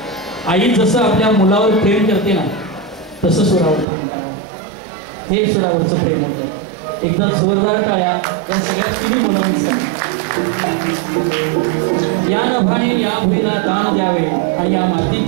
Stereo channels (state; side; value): drops out; left; at 3.9 s